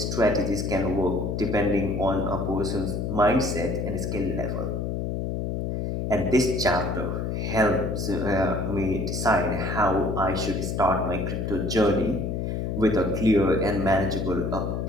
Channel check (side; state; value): left; noise; hum, 2 dB below the sound